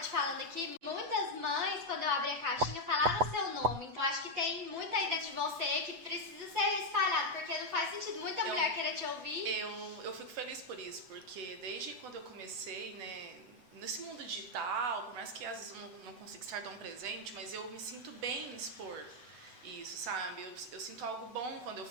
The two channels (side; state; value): left; late; 8.0 ms